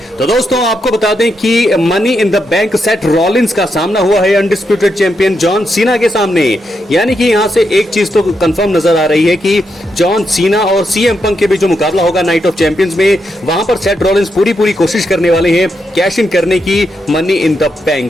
तो दोस्तों आपको बता दें कि money in the bank Seth Rollins का सामना हुआ है अनडिस्प्यूटेड चैंपियन जॉन सीना के सामने। यानी कि यहां से एक चीज तो कंफर्म नजर आ रही है कि जॉन सीना और सीएम पंक के बीच जो मुकाबला होगा नाइट ऑफ चैंपियंस में, वहां पर सेथ रॉलिंस पूरी कोशिश करने वाले हैं कैश इन करने की मनी इन द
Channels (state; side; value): normal; both; correlation 0.82